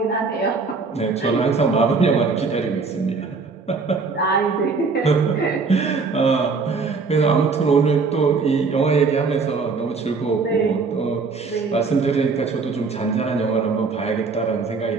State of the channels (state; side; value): quieter; left; 4.5 dB